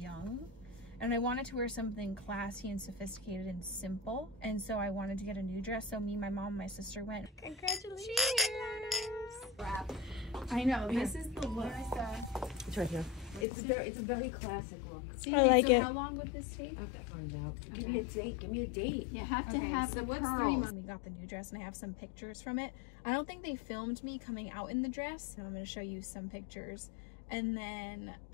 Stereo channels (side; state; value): right; drops out; at 13.5 s